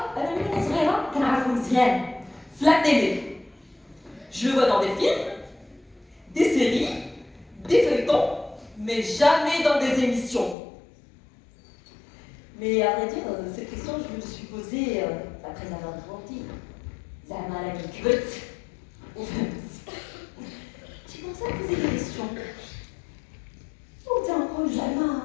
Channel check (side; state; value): right; drops out; at 10.6 s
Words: أنا من وأنا صغيرة كنعرفو مزيان في la télé. Je le vois dans des films, des séries, des feuilletons, mais jamais dans des émissions. Mais à vrai dire, cette question, je me suis posée après avoir grandi. زعما أنا كي كبرت وفهمت. J'ai commencé à poser des questions. نقول زعما